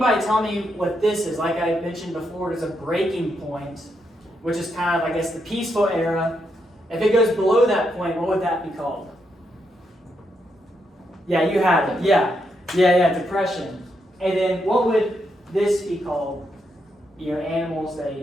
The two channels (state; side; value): normal; both; correlation 0.80